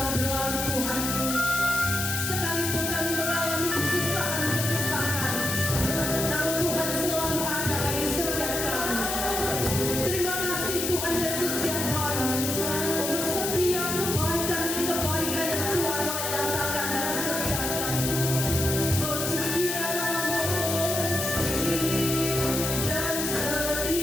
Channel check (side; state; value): left; noise; hiss, 2 dB below the sound